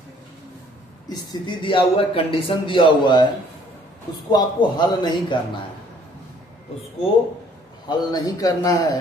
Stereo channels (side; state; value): both; normal; correlation 0.59